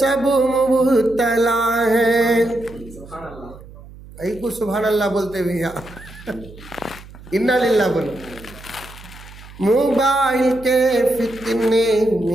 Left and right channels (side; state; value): right; noise; hum, 19 dB below the sound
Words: مبتلا ہیں. ای کو سبحان اللہ بولتے ہوئے انا للہ بولو. موبائل کے فتنے